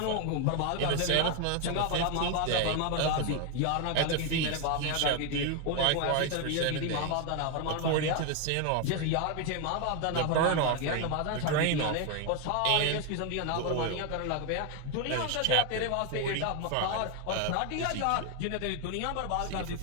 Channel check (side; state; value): both; different; correlation 0.01